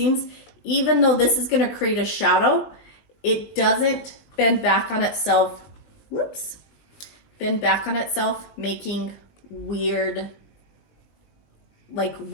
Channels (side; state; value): right; late; 20 ms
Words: even though this is going to create a shadow, it doesn't bend back on itself. Whoops. Bend back on itself, making weird, like